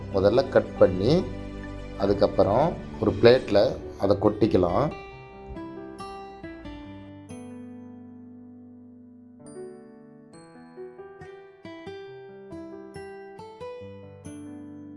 முதல்ல கட் பண்ணி அதுக்கப்புறம் ஒரு பிளேட்டில் அதை கொட்டிக்கலாம்.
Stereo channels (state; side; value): identical; both; correlation 1.00